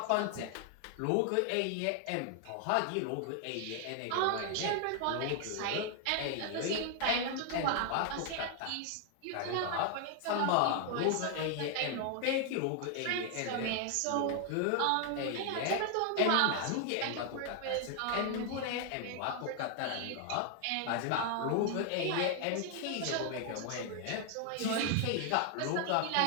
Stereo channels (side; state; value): both; different; correlation 0.00